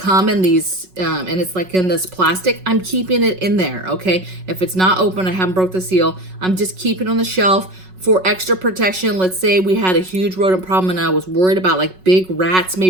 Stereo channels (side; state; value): left; late; 5.4 ms